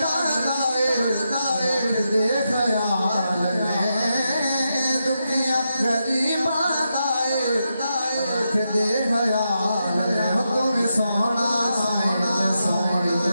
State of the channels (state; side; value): inverted; both; correlation -0.85